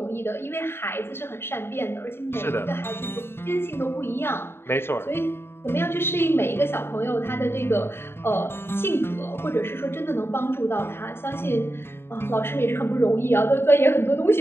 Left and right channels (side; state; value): right; late; 0.11 ms